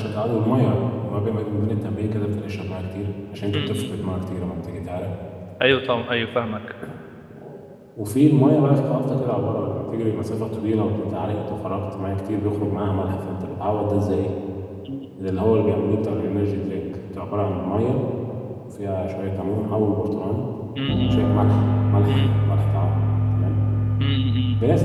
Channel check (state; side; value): identical; both; correlation 1.00